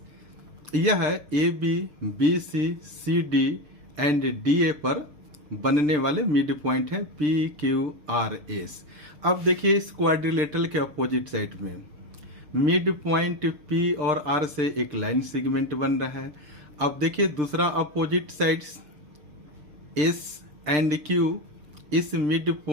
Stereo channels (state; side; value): late; left; 6.6 ms